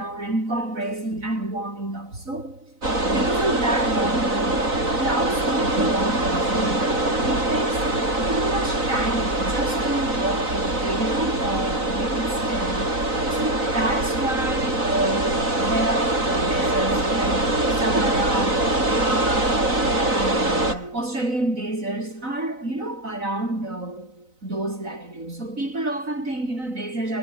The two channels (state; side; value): late; left; 4.0 ms